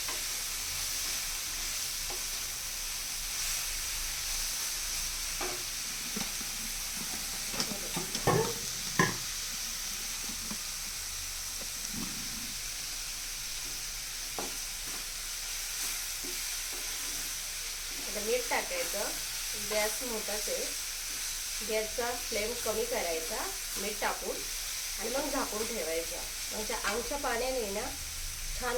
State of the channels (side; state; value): both; identical; correlation 1.00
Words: आता मीठ टाकायचं. गॅस मोठाच आहे. गॅसचा फ्लेम कमी करायचा मीठ टाकून आणि मग झाकून ठेवायचा. म्हणजे आमच्या पाण्याने ना